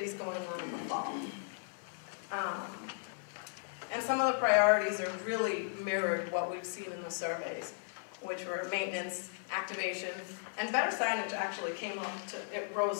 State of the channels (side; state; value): right; silent; 54 dB below the other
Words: going on in the fall. And some of the priorities are really mirrored what we've seen in the surveys, which were maintenance, activation, and better signage actually came up it